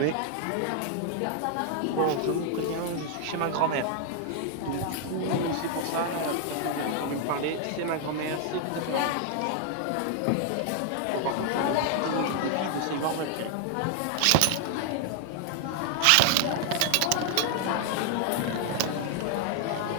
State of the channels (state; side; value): different; both; correlation 0.00